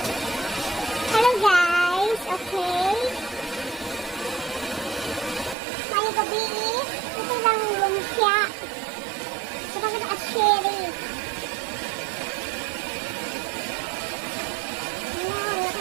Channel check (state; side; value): drops out; left; at 5.6 s